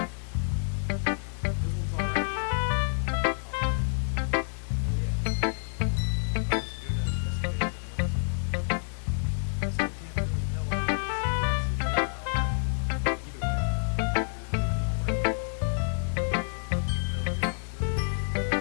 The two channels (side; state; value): right; silent; digital silence